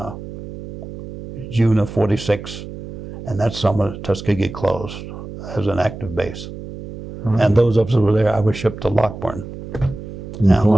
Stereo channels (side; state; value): right; noise; hum, 11 dB below the sound